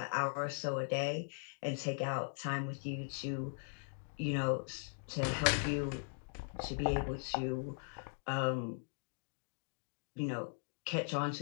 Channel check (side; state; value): right; silent; digital silence